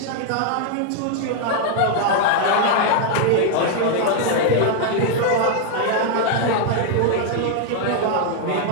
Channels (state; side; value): different; both; correlation 0.00